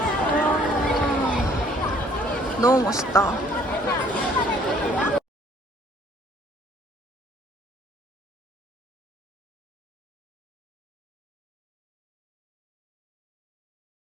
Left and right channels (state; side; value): normal; both; correlation 0.59